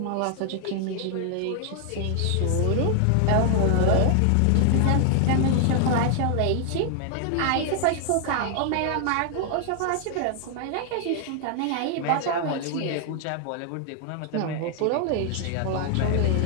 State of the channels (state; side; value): different; both; correlation 0.00